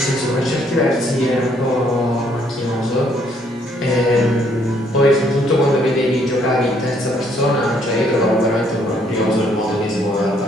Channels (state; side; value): normal; both; correlation 0.67